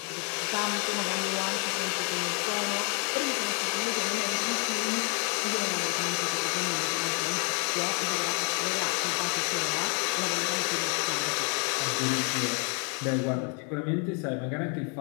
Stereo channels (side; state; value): right; quieter; 37.7 dB